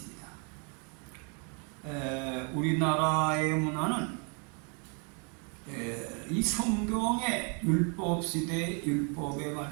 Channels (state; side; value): quieter; left; 37.8 dB